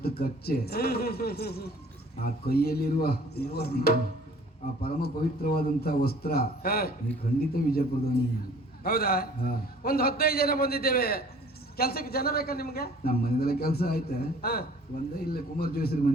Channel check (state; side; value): normal; both; correlation 0.52